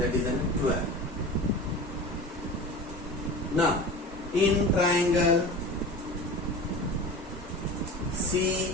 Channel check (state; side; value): normal; both; correlation 0.34